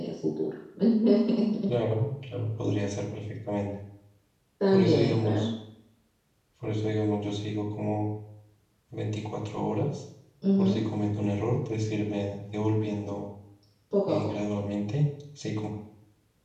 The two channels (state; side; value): identical; both; correlation 1.00